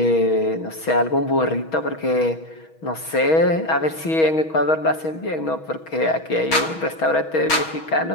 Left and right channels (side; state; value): right; late; 6.3 ms